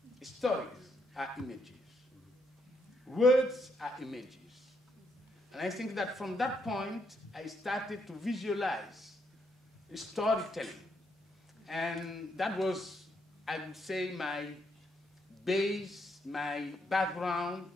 Stories are images. Words are images. And I think that from that point, I started to visualize storytelling. And that was, I would say, my base, my background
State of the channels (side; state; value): both; normal; correlation 0.76